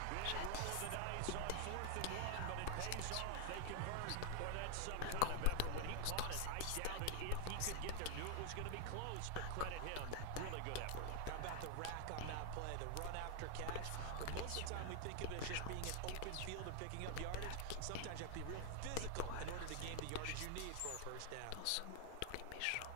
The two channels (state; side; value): different; both; correlation 0.00